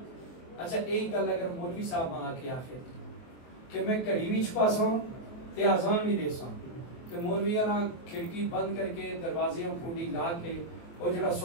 اچھا ایک گل اگر مولوی صاحب ماں آکے آخر کہ میں کڑی بھی چھپا سا ہوں تے آزان بھی دے سا ہوں تے مولوی کھڑکی بند کر کے دروازیاں پھونڈی لا کے وہ جڑا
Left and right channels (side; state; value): right; late; 24 ms